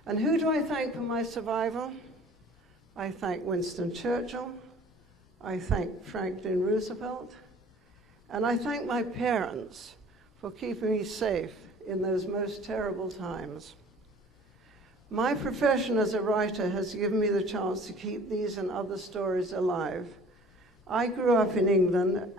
And who do I thank for my survival? I thank Winston Churchill, I thank Franklin Roosevelt, and I thank my parents for keeping me safe in those most terrible times. My profession as a writer has given me the chance to keep these and other stories alive. I grew up in England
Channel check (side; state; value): both; normal; correlation 0.49